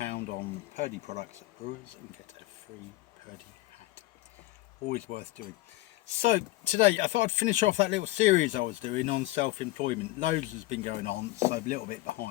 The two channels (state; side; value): quieter; right; 19.0 dB